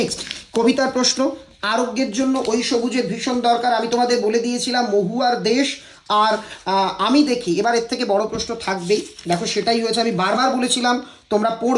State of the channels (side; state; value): both; identical; correlation 1.00